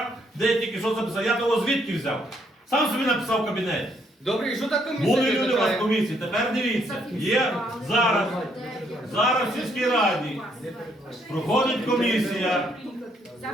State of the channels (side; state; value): both; normal; correlation 0.71